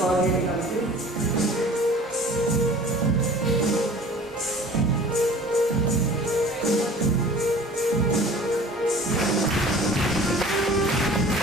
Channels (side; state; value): both; normal; correlation 0.45